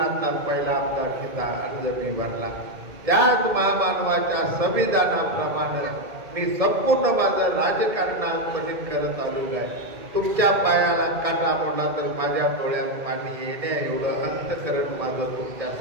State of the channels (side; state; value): left; late; 1.8 ms